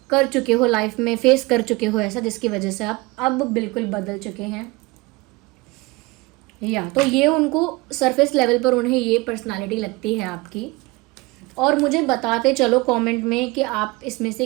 कर चुके हो लाइफ में, फेस कर चुके हो ऐसा, जिसकी वजह से आप अब बिल्कुल बदल चुके हैं। तो ये उनको सरफेस लेवल पर उन्हें ये पर्सनालिटी लगती है आपकी। और मुझे बताते चलो कमेंट में कि आप इसमें से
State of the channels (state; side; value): quieter; left; 22.9 dB